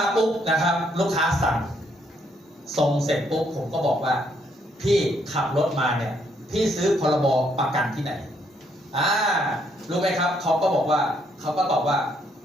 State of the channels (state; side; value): normal; both; correlation 0.72